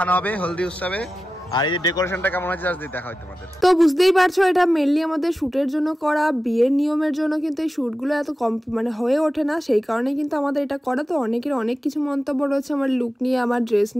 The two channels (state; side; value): normal; both; correlation 0.94